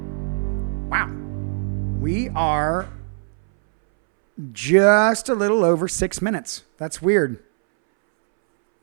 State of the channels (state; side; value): silent; left; 65 dB below the other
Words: Wow. We are just a little over 6 minutes. That's weird.